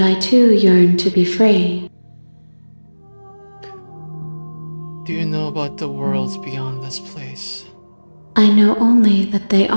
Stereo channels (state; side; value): inverted; both; correlation -1.00